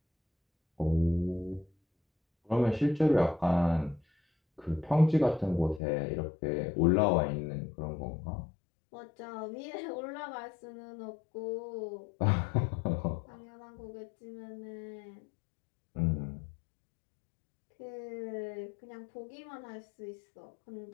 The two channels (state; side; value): drops out; right; at 5.8 s